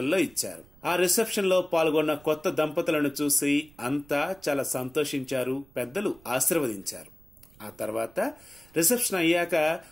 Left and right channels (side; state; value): right; noise; rumble, 26 dB below the sound